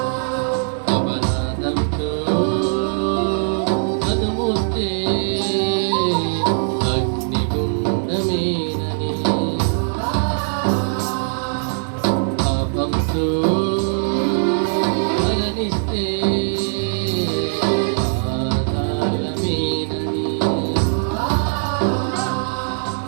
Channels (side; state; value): left; silent; digital silence